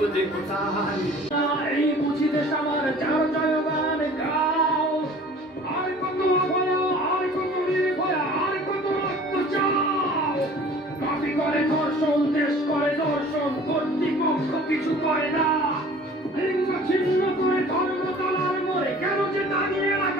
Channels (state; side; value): normal; both; correlation 0.47